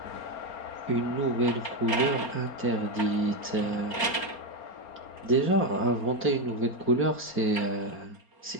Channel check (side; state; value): right; late; 4.4 ms